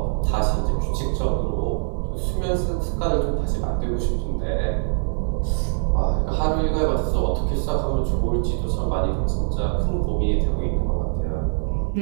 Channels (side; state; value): left; silent; digital silence